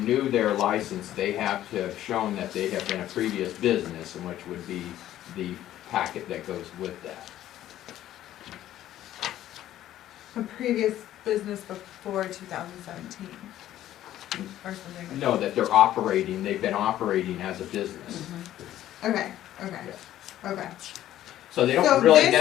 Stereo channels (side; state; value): right; quieter; 12.9 dB